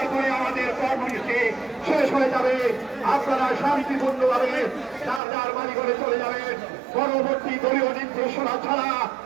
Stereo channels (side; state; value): left; drops out; at 5.2 s